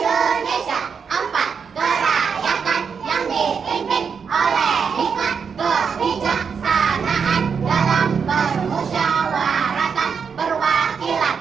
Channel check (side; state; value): left; quieter; 6.2 dB